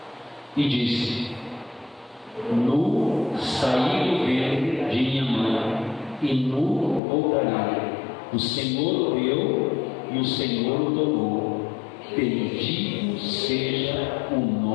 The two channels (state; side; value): drops out; right; at 7.0 s